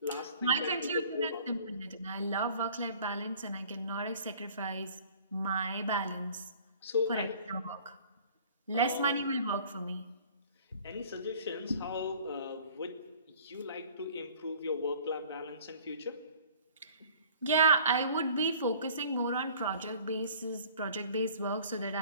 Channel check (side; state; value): both; inverted; correlation -0.50